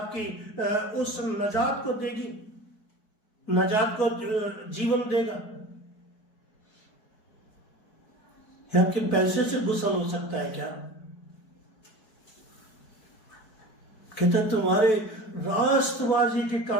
उस नजात को देगी, नजात को जीवन देगा? या आपके पैसे से गुसल हो सकता है क्या? कहते तुम्हारे राष्ट्रवादी के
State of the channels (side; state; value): right; late; 4.6 ms